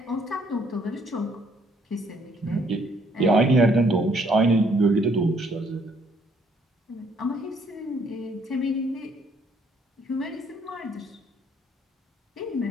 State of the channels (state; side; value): normal; both; correlation 0.66